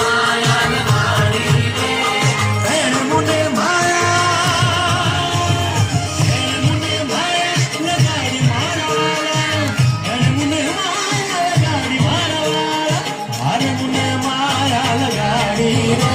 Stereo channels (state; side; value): identical; both; correlation 1.00